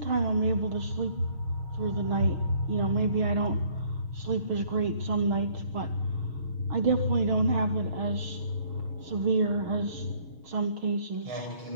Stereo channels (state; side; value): late; left; 6.4 ms